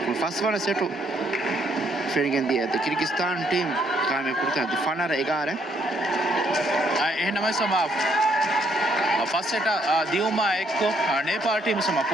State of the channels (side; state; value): both; normal; correlation 0.70